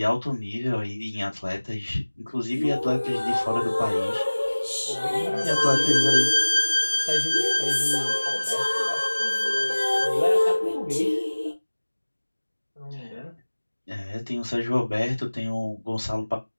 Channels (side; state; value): both; inverted; correlation -1.00